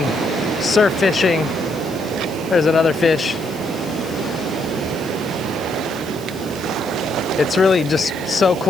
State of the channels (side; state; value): right; noise; hiss, 18 dB below the sound